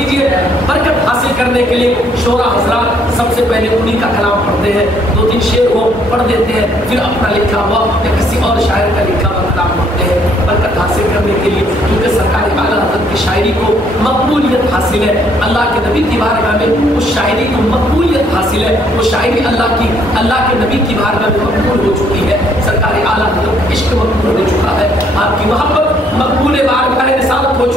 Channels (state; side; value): normal; both; correlation 0.66